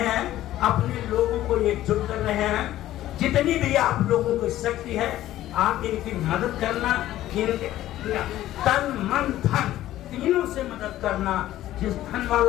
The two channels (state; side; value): quieter; right; 14.0 dB